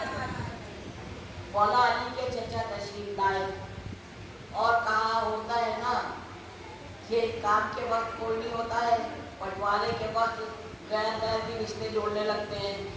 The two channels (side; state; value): both; identical; correlation 1.00